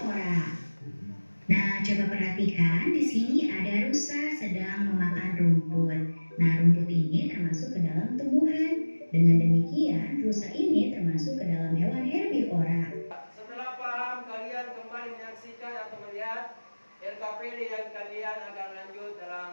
Nah, coba perhatikan di sini ada rusa sedang memakan rumput. Nah, rumput ini termasuk ke dalam tumbuhan. Dengan demikian, rusa ini termasuk ke dalam hewan herbivora. Setelah paham, kalian kembali menyaksikan atau melihat LKPD yang kalian akan lanjut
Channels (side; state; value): both; inverted; correlation -1.00